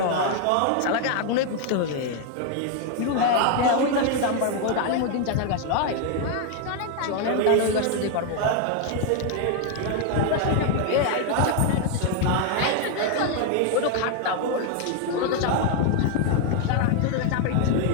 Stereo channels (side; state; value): both; different; correlation 0.01